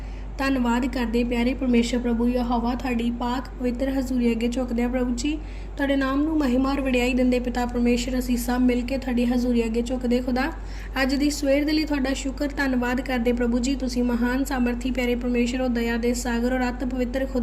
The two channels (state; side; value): identical; both; correlation 1.00